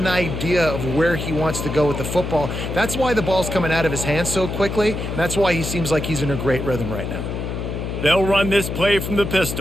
idea of where he wants to go with the football. That's why the ball's coming out of his hands so quickly, and that's why he seems like he's in a great rhythm right now. They'll run this play from the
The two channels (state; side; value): noise; left; hum, 4 dB below the sound